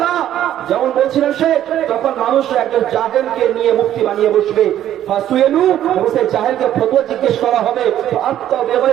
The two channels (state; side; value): quieter; left; 11.7 dB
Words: যেমন বলছিলেন সে, তখন মানুষ একজন জাহেলকে নিয়ে মুফতি বানিয়ে বসবে। ফাসুয়েলু, সেই জাহেলকে ফতোয়া জিজ্ঞেস করা হবে, আত্তা